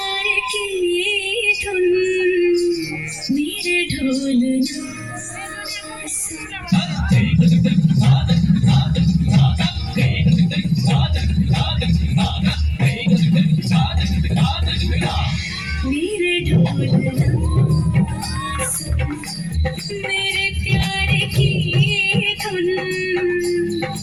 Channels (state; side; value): noise; left; rumble, 25 dB below the sound